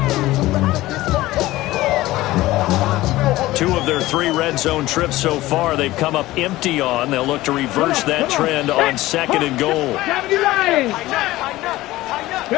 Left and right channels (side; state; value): right; quieter; 17.3 dB